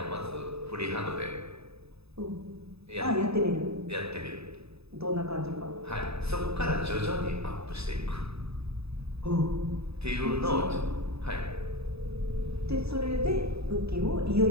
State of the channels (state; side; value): late; left; 0.79 ms